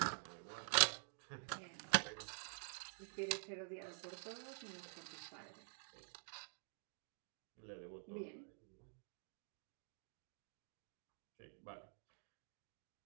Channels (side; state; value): left; silent; digital silence